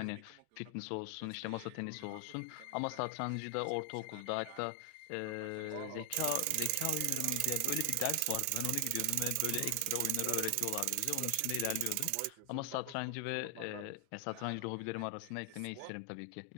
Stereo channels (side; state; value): both; different; correlation 0.00